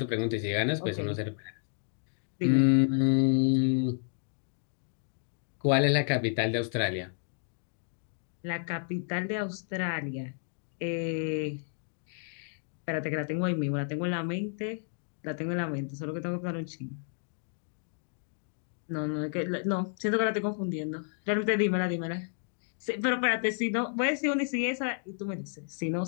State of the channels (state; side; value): silent; right; 57 dB below the other